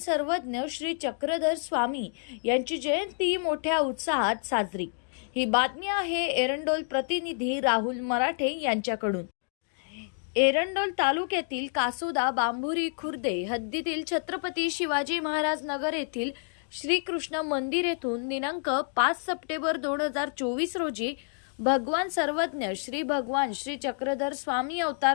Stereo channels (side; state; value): right; silent; 59 dB below the other